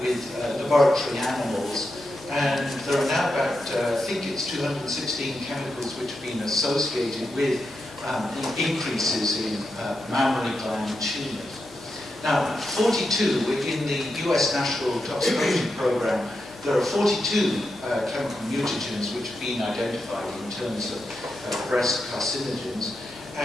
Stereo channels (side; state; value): left; noise; hum, 29 dB below the sound